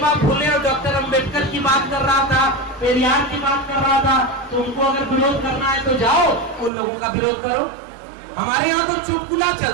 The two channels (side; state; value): left; drops out; at 6.7 s